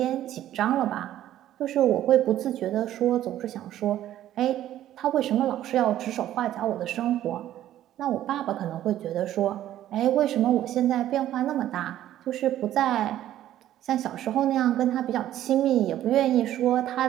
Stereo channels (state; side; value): quieter; left; 12.6 dB